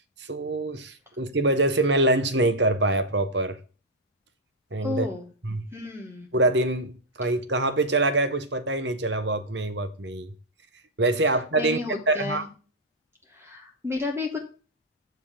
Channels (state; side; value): normal; both; correlation -0.06